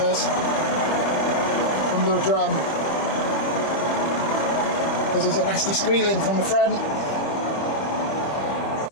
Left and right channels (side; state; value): right; late; 25 ms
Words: from the drum because there's a nasty squealing from the front.